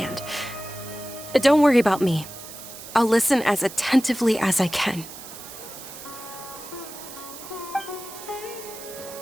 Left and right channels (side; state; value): right; noise; hiss, 13 dB below the sound